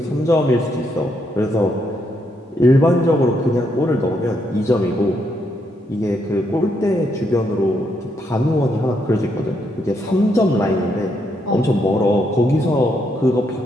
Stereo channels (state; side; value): normal; both; correlation 0.77